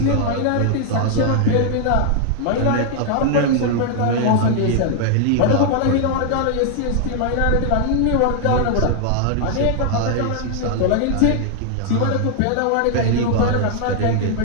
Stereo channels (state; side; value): different; both; correlation 0.00